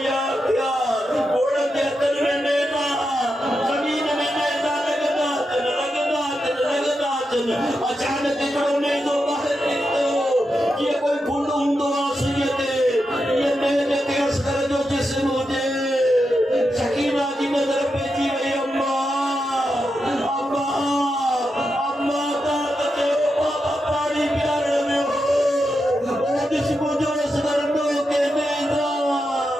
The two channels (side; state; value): both; normal; correlation 0.87